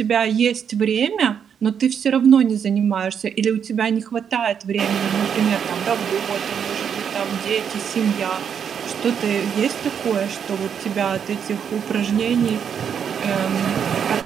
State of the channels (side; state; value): left; quieter; 7.7 dB